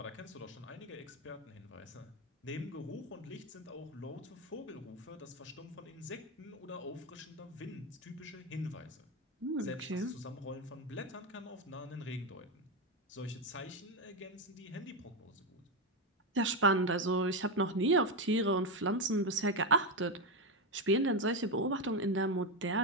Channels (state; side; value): normal; both; correlation 0.10